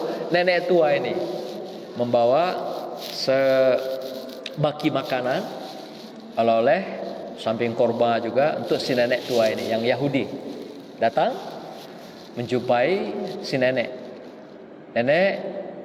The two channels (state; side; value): identical; both; correlation 1.00